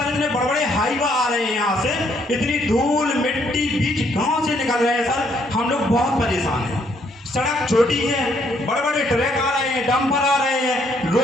इतने बड़े बड़े हाईवा आ रहे हैं यहाँ से, इतनी धूल मिट्टी बीच गांव से निकल रहे हैं सर। हम लोग बहुत परेशान हैं। सड़क छोटी है, बड़े बड़े ट्रक आ रहे हैं, डंपर आ रहे हैं,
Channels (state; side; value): normal; both; correlation 0.69